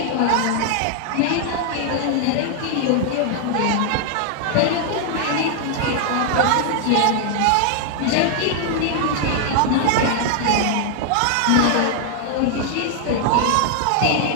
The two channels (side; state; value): both; different; correlation 0.00